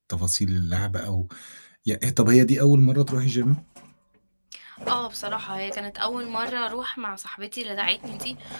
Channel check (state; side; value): inverted; both; correlation -1.00